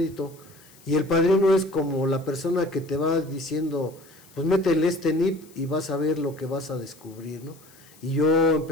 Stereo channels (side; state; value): left; noise; hiss, 25 dB below the sound